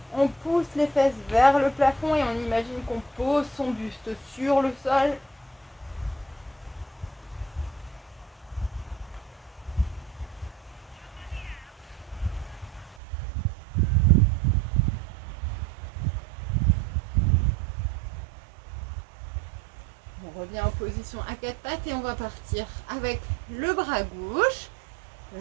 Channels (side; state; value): left; drops out; at 13.0 s